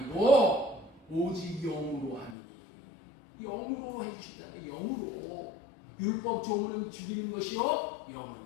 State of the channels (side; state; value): right; drops out; at 2.4 s